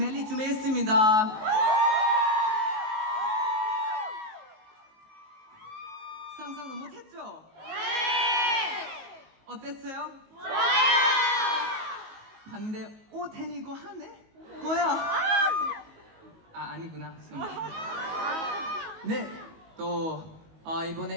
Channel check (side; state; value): left; late; 19 ms